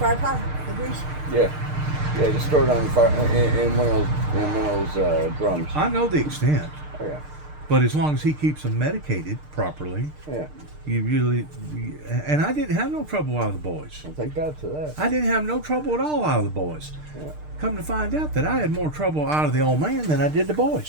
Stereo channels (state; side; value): late; left; 6.6 ms